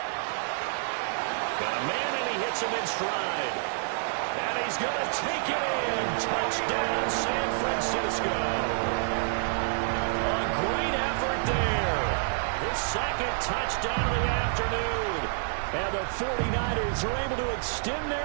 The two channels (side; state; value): left; silent; 59 dB below the other